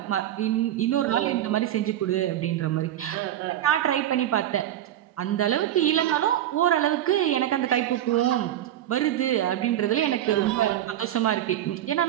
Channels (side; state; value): left; quieter; 12.1 dB